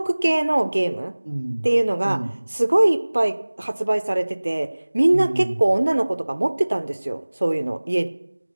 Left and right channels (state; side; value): inverted; both; correlation -1.00